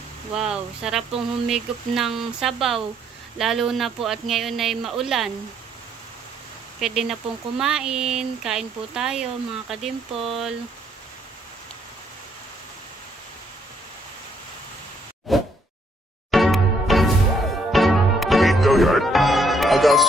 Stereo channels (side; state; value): both; normal; correlation 0.69